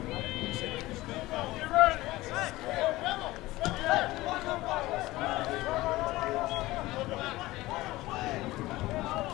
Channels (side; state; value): right; quieter; 18.5 dB